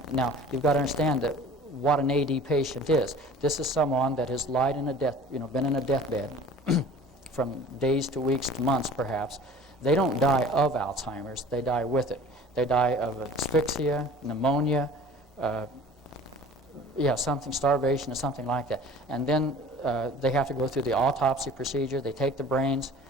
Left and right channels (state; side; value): normal; both; correlation 0.44